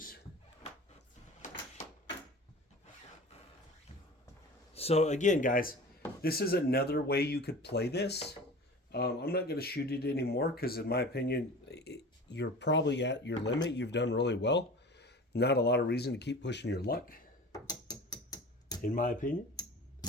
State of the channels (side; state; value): both; normal; correlation 0.38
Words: So again, guys, this is another way you could play this. I'm not going to shoot it anymore because, in my opinion, you're probably at your limit. You've done really well. Not a lot of reason to keep pushing your luck, in my opinion.